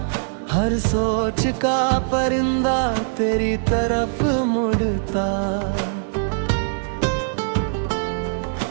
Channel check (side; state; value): left; silent; 56 dB below the other